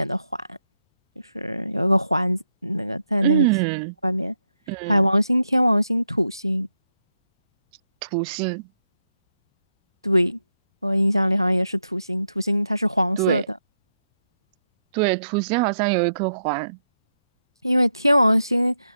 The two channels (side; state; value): both; inverted; correlation -0.78